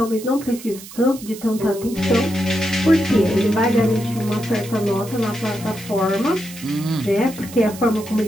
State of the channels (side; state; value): right; noise; hiss, 16 dB below the sound